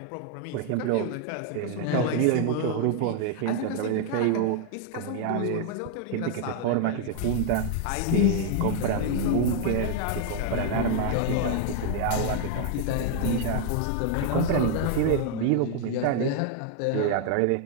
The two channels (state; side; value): different; both; correlation 0.00